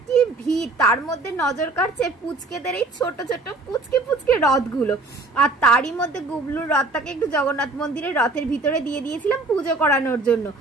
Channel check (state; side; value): quieter; left; 3.2 dB